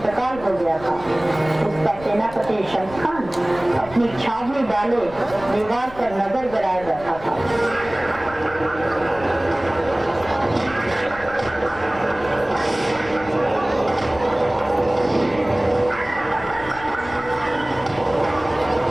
हो गया था। उसका सेनापति शम्स खान अपनी छावनी डाले दीवार पर नजर गड़ाए बैठा था।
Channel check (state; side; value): noise; left; rumble, 17 dB below the sound